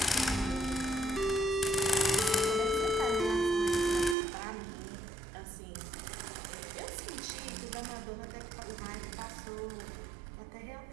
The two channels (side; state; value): left; drops out; at 4.2 s